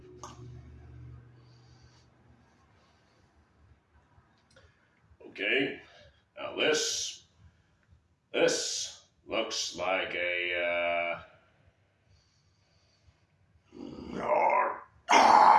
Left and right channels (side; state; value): both; identical; correlation 1.00